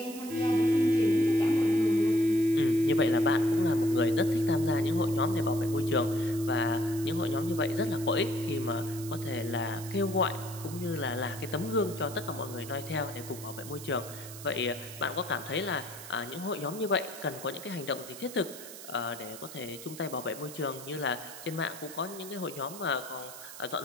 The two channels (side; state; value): right; noise; hiss, 13 dB below the sound